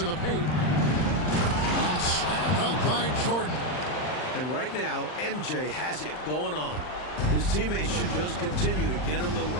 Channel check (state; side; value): late; right; 39 ms